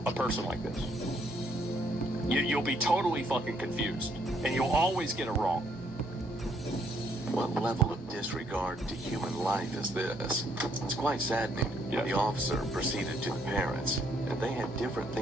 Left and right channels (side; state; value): both; normal; correlation 0.69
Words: a person like this. You'll be totally fucking confused, and you'll always get it wrong. What level of disregard to human life is this? It's quite saddening. Yeah. The officer proceeded to the parents, and they had different